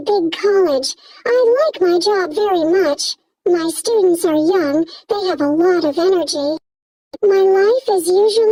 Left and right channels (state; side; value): identical; both; correlation 1.00